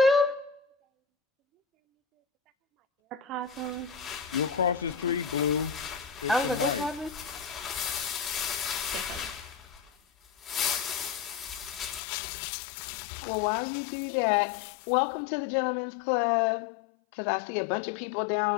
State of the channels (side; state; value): right; drops out; at 12.0 s